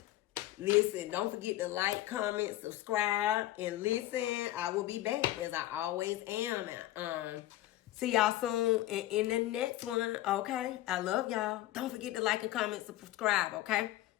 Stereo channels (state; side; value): quieter; right; 15.2 dB